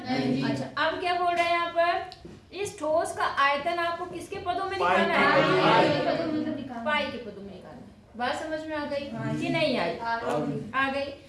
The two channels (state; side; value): identical; both; correlation 1.00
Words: नहीं? अच्छा, अब क्या बोल रहे हैं यहाँ पर? इस ठोस का आयतन आपको किसके पदों में निकालना है? पाई के पदों में निकालना है। बात समझ में आ गई कि नहीं आई? आ गई।